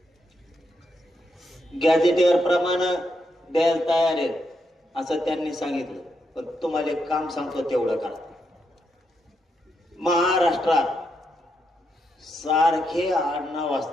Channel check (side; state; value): both; normal; correlation 0.81